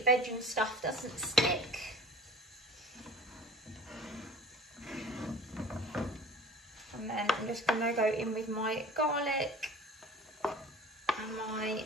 veg and stuff doesn't stick. And then I'm just going to go in with my garlic and my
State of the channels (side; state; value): both; normal; correlation 0.43